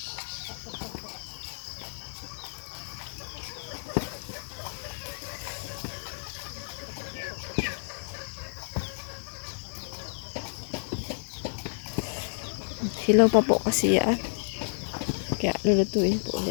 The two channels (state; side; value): silent; right; 58 dB below the other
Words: Hilaw pa po kasi yan. Kaya lulutuin po